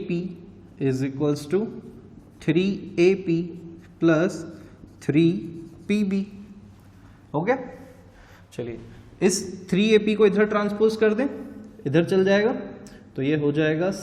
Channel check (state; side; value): identical; both; correlation 1.00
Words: is equals to 3AP plus 3PB। हो गया। चलिए इस 3AP को इधर ट्रांसपोज कर दें, इधर चल जाएगा, तो ये हो जाएगा